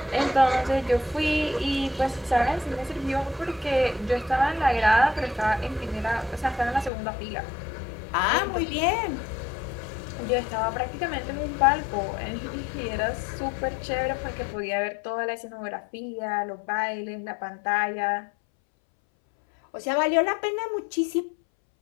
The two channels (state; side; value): drops out; right; at 6.9 s